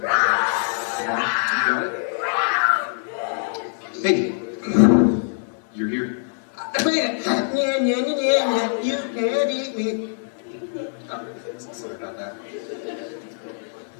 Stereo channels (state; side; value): silent; right; digital silence